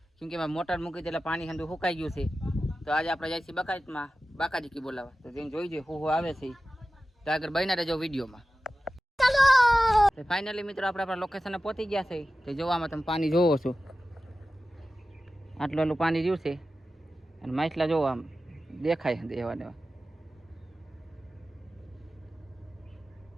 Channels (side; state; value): both; normal; correlation 0.94